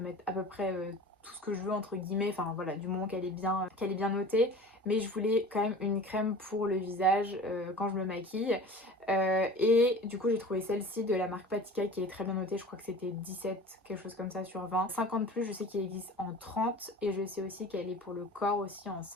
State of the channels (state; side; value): normal; both; correlation 0.40